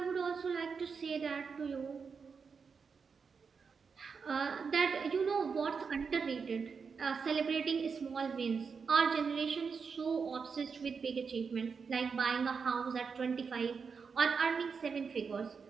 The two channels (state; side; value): quieter; left; 5.6 dB